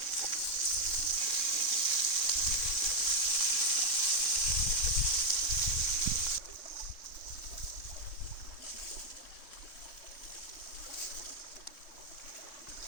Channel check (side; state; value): right; late; 3.7 ms